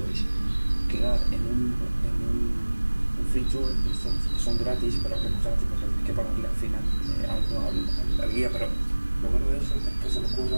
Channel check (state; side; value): inverted; both; correlation -1.00